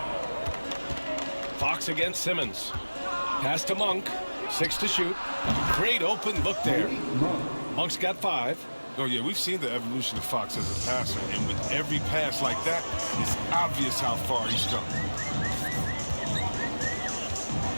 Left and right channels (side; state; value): both; inverted; correlation -1.00